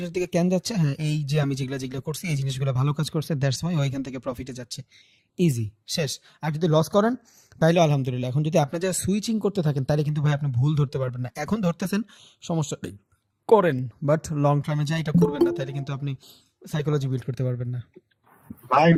দিকে কেন যাচ্ছে। হ্যাঁ, এই যে আমি যেগুলা যেগুলা করছি এই জিনিসগুলো ভালো কাজ করছে, দ্যাটস ওয়াই ওইখান থেকে প্রফিটে যাচ্ছে। ইজি, শেষ। আর যদি লস করেন তাহলে আলহামদুলিল্লাহ। এখন যদি আপনি যা সুইচিং করতে থাকেন তাহলে কিন্তু ভাই আপনি ভুল ধরতে পারবেন না। এখন ধরতেছেন, সমস্যা নেই, করেন, বাট লং টার্মে যা এটা করবেন না, তাহলে কিন্তু আপনি সাইকোলজি বিল্ড করতে পারবেন না। ভাই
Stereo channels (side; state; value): both; identical; correlation 1.00